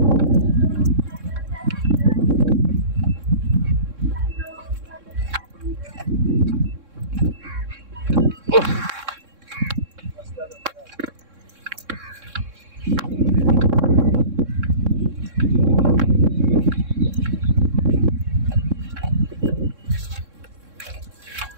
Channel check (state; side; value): late; left; 3.6 ms